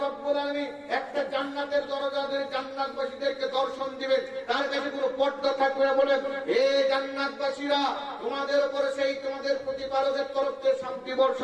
রাব্বুল আলামিন একটা জান্নাতের দরজা ধরে জান্নাতবাসীদেরকে দর্শন দিবেন, তার কাছে কোনো পর্দা থাকবে না। বলেন, হে জান্নাতবাসীরা, তোমাদের উপরে সেই তোমাদের প্রতিপালকের তরফ থেকে শান্তি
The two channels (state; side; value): identical; both; correlation 1.00